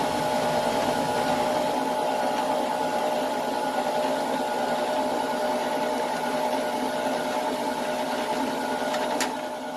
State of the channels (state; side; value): identical; both; correlation 1.00